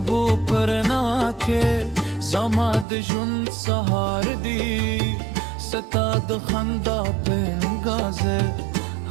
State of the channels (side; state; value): left; drops out; at 2.9 s